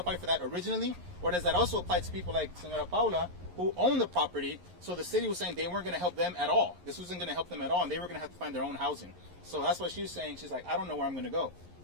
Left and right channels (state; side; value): late; left; 11 ms